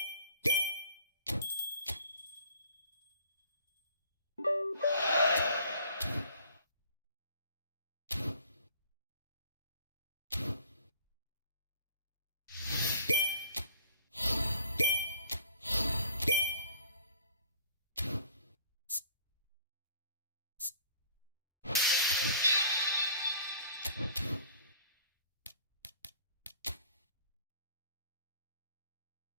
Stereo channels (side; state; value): both; inverted; correlation -0.53